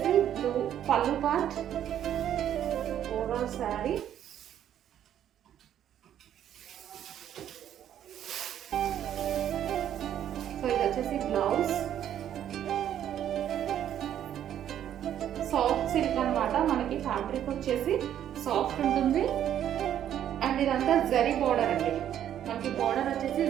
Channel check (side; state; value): left; quieter; 10.5 dB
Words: బ్లూ పళ్ళు పార్ట్, ఓవరాల్ శారీ. సో ఇది వచ్చేసి బ్లౌజ్. సాఫ్ట్ సిల్క్ అనమాట, మనకి ఫ్యాబ్రిక్ వచ్చేసి సాఫ్ట్ ఉంటుంది. అండ్ ఇదంతా జరీ బోర్డర్ అండి, మనకి బోర్డర్ వచ్చేసి